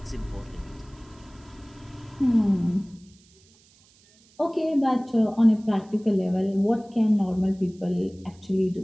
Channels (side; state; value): right; noise; hiss, 30 dB below the sound